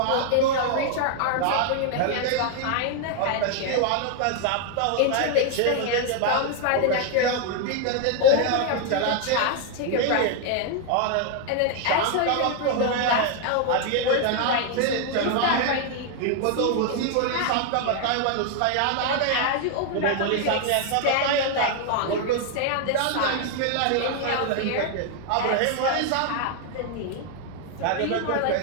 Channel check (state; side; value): different; both; correlation 0.00